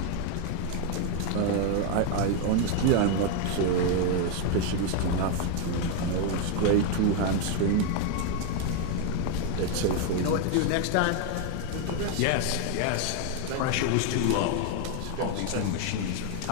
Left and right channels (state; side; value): different; both; correlation 0.01